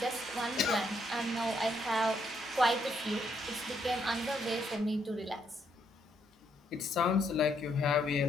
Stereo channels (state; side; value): normal; both; correlation 0.74